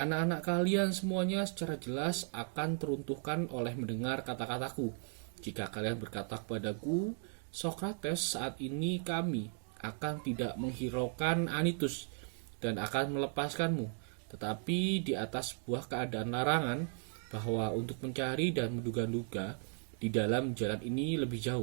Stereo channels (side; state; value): left; silent; 54 dB below the other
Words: kalian semuanya secara jelas akan teruntuhkan oleh mendengar kata-kataku. Jika kalian berkata kepadaku, Sokrates, saat ini kami akan tidak menghiraukan Anytus dan akan melepaskanmu, tetapi di atas sebuah keadaan larangan bahwa untuk mencari dan menduga-duga di dalam jalan ini lebih